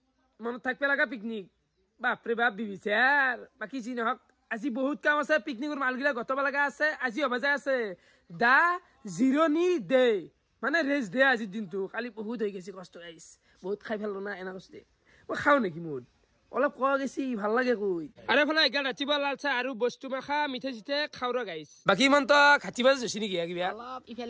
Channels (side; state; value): both; identical; correlation 1.00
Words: Mano thakpe laga picnic. Bapre bap bibisar. Baki ji nohok আজি বহুত কাম আছে পিকনিকৰ মালগিলা গতবা লাগা আছে আজি অবাজা আছে দা জিরোনি day মানে রেস্ট ডে আজি দিনটো খালি বহুত হৈ গেছি কষ্ট গাইস বহুত খাই ফেললো না এনা কষ্ট মই খাও নেকি মুড অলপ কোৱা গেছি ভাল লাগে কই আৰে ফলে এগাল ৰাতিবা লালচা আৰু বস্তু মাখা মিঠে জিতে খাওৰা গাইস বাকি মন তো খাতিবা জছি নেকি কিবা অলপ